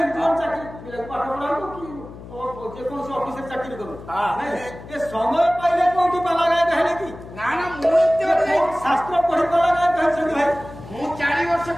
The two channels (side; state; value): left; noise; hum, 15 dB below the sound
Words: ଚାକିରି ପିଲାଙ୍କୁ ପାଠ ପଢାନ୍ତୁ କି ଯେକୌଣସି ଅଫିସରେ ଚାକିରି କରୁ ଏ ସମୟ ପାଇଲେ କୋଉଠି ପାଲା ଗାୟକ ହେଲେ କି ନା ନା ମୁଁ ଶାସ୍ତ୍ର ପଢି ପାଲା ଗାୟକ ହେଉଛନ୍ତି ଭାଇ ମୁଁ 4 ବର୍ଷ